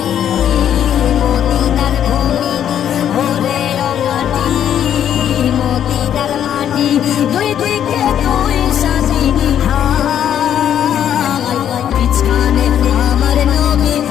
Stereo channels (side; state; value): right; quieter; 9.8 dB